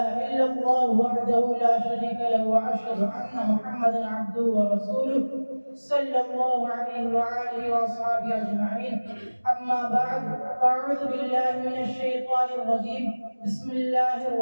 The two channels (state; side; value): inverted; both; correlation -1.00